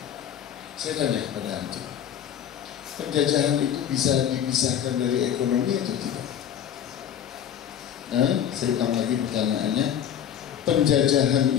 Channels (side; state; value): right; quieter; 9.5 dB